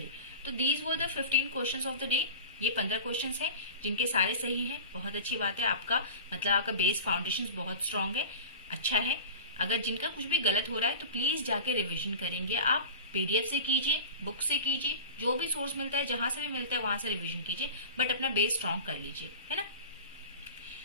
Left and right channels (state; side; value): inverted; both; correlation -0.34